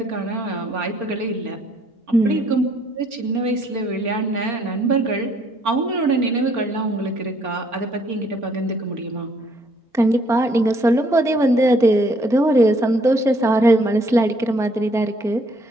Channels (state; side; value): normal; both; correlation 0.65